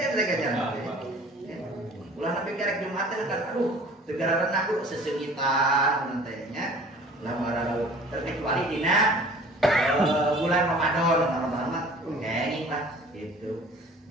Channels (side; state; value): both; normal; correlation 0.48